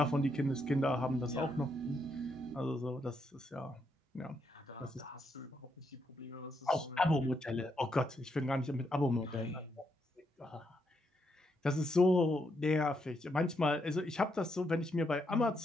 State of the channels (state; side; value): normal; both; correlation 0.79